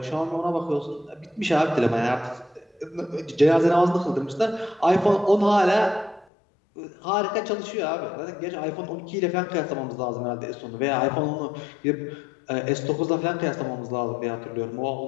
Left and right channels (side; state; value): right; drops out; at 6.2 s